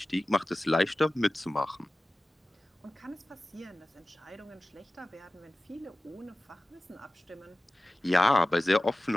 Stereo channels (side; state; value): both; normal; correlation 0.96